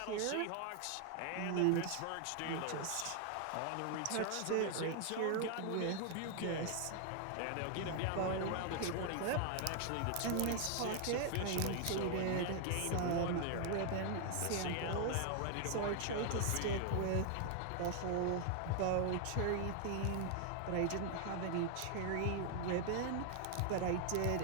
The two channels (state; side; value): different; both; correlation 0.00